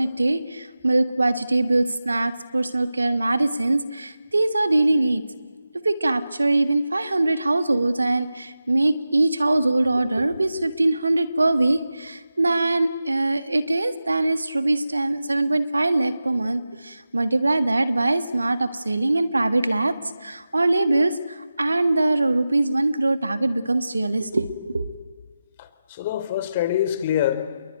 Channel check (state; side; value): inverted; both; correlation -0.93